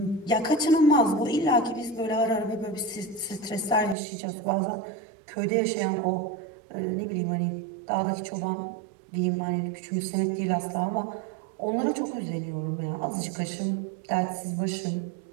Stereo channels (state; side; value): drops out; left; at 4.0 s